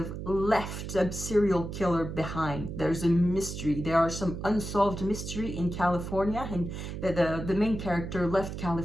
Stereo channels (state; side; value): noise; right; hum, 7 dB below the sound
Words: left a serial killer behind. There's a mystery. There are some unsolved mystery in California, and the main character left